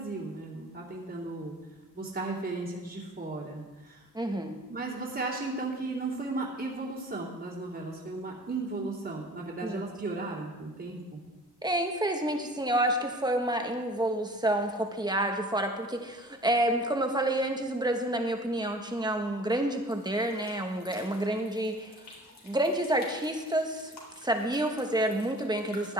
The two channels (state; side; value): normal; both; correlation 0.47